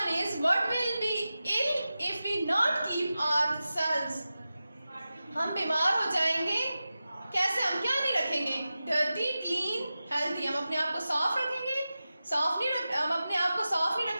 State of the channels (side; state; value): both; inverted; correlation -0.93